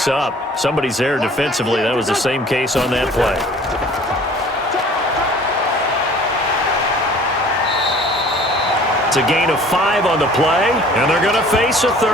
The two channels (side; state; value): both; normal; correlation 0.50